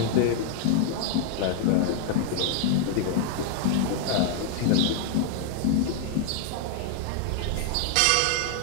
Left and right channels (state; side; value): different; both; correlation 0.00